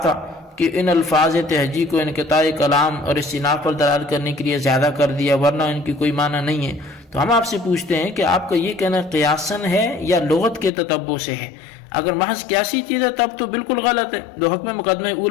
تھا کہ ان الفاظ تہجی کو انقطاع کلام اور استئناف پر دلالت کرنے کے لیے زیادہ کر دیا، ورنہ ان کی کوئی معنی نہیں ہے۔ تو ہم آپ سے پوچھتے ہیں کہ آپ کا یہ کہنا قیاسن ہے یا لغت کے تتبع سے ہے؟ اگر محض قیاسی چیز ہے تب تو بالکل غلط ہے، دو حکم مقدمہ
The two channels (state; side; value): drops out; right; at 10.7 s